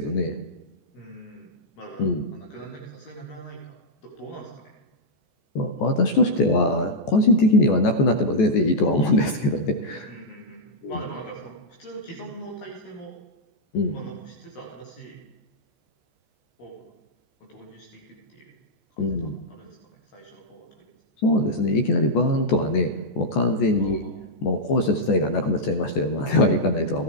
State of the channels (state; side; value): late; right; 14 ms